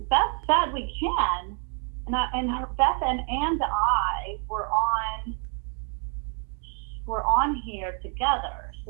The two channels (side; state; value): left; quieter; 38.9 dB